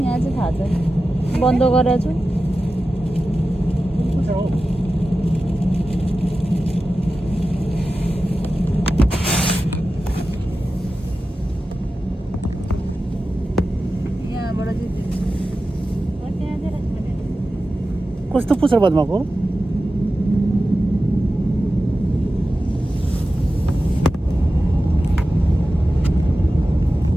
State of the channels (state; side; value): normal; both; correlation 0.93